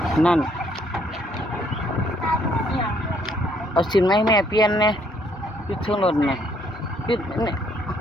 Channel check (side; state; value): both; normal; correlation 0.67